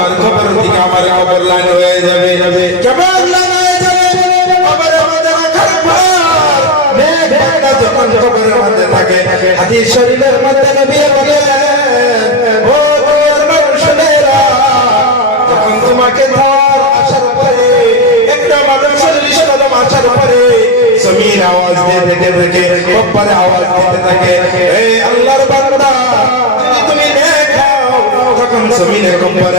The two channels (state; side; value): normal; both; correlation 0.11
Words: কবর থেকে আমার কবর লাইন হয়ে যাবে। কেমন লাইন হয়ে যাবে? কবরের মধ্যে রাখার পর নেক বান্দা যখন কবরের মধ্যে থাকে, হাদিস শরীফের মধ্যে নবী বলেন ও দুনিয়ার মানুষেরা, যখন তোমাকে ধর আসার পরে একটা মানুষের 40 কদম আসার পরে জমিন আওয়াজ দিতে থাকে, কবরে আওয়াজ দিতে থাকে, এই আল্লাহর বান্দা তুমি দেখাও, তখন জমিনের